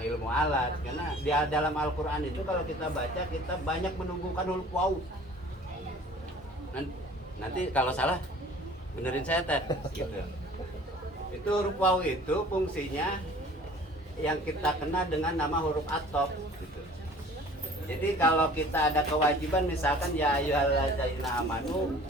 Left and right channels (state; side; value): normal; both; correlation 0.48